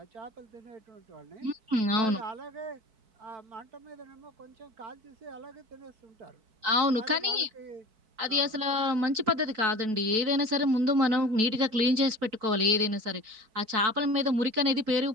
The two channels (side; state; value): left; late; 4.6 ms